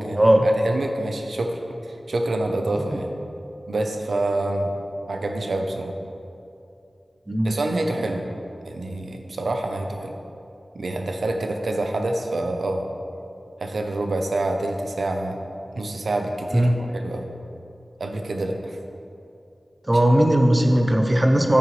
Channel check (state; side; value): normal; both; correlation 0.97